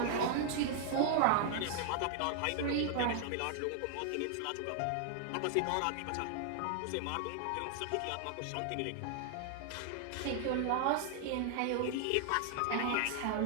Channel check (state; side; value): different; both; correlation 0.00